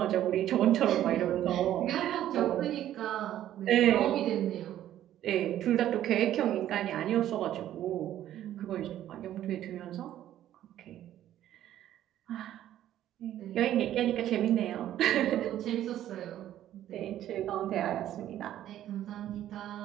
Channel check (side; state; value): left; quieter; 12.2 dB